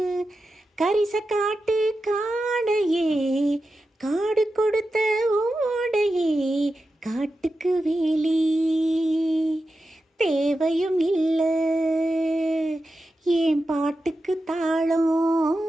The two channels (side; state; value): both; normal; correlation 0.91